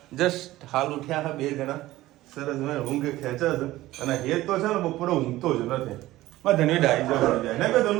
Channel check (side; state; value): left; quieter; 16.6 dB